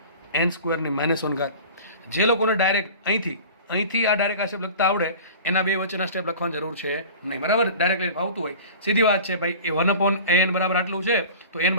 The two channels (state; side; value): inverted; both; correlation -0.39